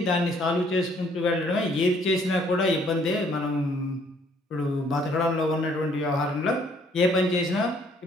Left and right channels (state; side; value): normal; both; correlation 0.63